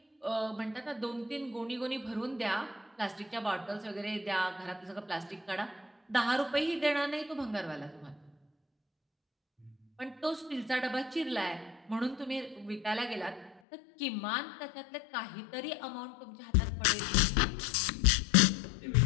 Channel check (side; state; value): right; drops out; at 13.6 s